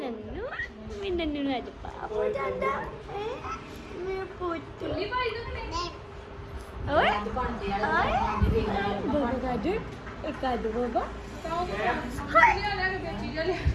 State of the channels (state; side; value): identical; both; correlation 1.00